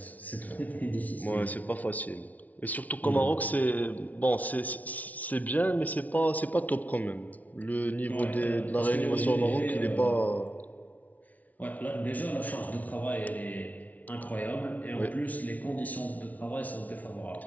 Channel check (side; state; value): right; late; 0.073 ms